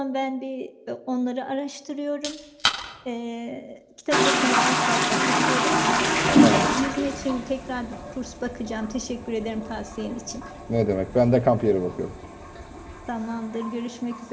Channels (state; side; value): identical; both; correlation 1.00